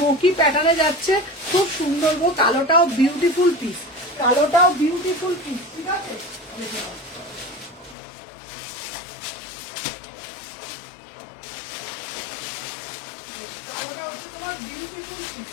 প্যাটার্নে যাচ্ছে, খুব সুন্দর গো। কালোটাও বিউটিফুল পিস, কালোটাও বিউটিফুল পিস। ঠিক আছে, দেখে নাও। কালোটা হচ্ছে তোমার বিউটিফুল পিস,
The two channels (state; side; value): drops out; right; at 8.0 s